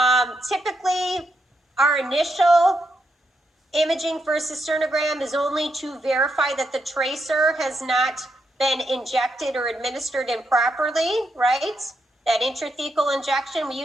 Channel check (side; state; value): both; normal; correlation 0.81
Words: Typically our initial imaging for a cisternogram is only to verify that the tracer has not been injected or administered improperly, right? That intrathecal injection, we